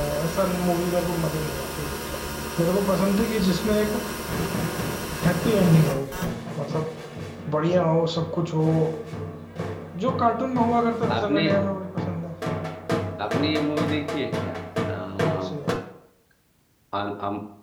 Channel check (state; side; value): identical; both; correlation 1.00